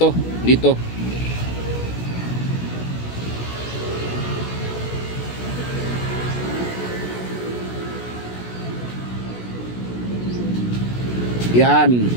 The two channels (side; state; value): right; late; 16 ms